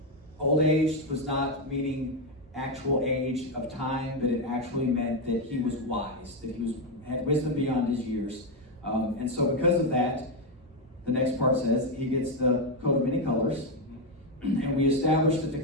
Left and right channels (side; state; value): both; normal; correlation 0.05